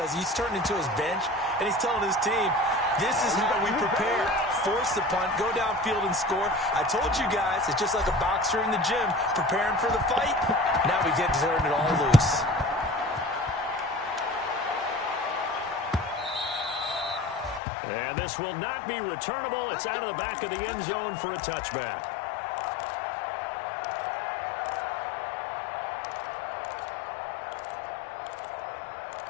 he's turned into his bench, and he's telling his team, this is how we prepare. Force the punt, go downfield and score. I told you guys, it's just like a boxer in the gym, preparing for the fight. Now we get to turn it all loose. And this will not be returnable. It's out of the back of the end zone for a touchback.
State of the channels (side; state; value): right; drops out; at 17.6 s